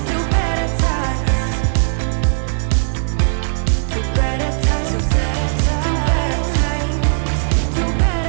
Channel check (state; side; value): silent; left; 65 dB below the other